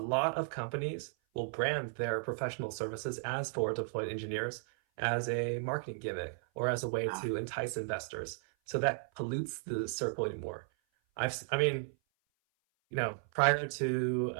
of companies will brand their professional services as forward deployed engineers as a marketing gimmick or as a way Ah, to entice investors. So that pollutes the circle anymore. I mean, prior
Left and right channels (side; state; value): left; silent; 55 dB below the other